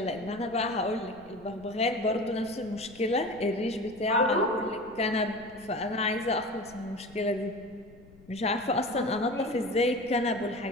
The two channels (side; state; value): left; noise; rumble, 23 dB below the sound